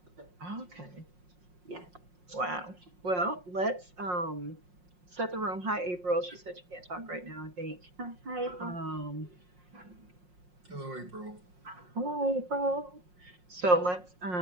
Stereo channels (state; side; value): late; left; 5.6 ms